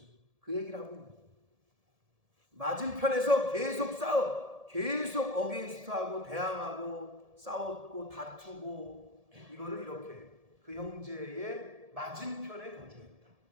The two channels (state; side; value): late; left; 1.7 ms